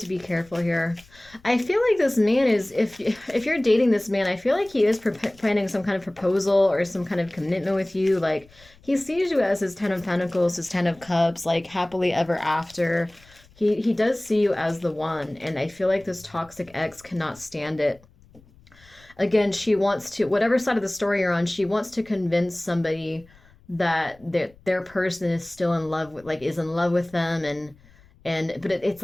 be careful here. I feel like this man is, if you're dating this man, I feel like he is planning some kind of proposal or some kind of commitment with you. Like he sees you as his Ten of Pentacles, his Ten of Cups, like happily ever after. He does see you as the one, and I feel like this toxic ex cannot stand it. Again, she wants to, whatever side of the story you're on, she wants to convince somebody that their person is still in love with, like is in love with them, but it's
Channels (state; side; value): noise; left; rumble, 27 dB below the sound